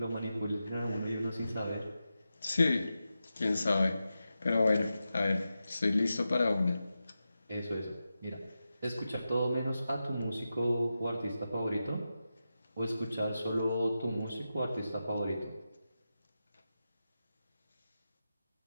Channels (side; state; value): both; inverted; correlation -0.91